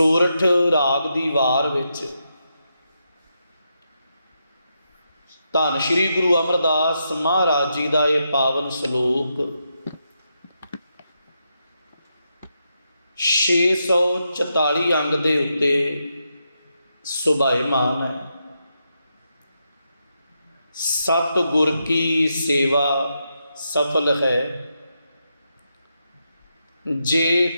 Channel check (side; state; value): both; inverted; correlation -0.84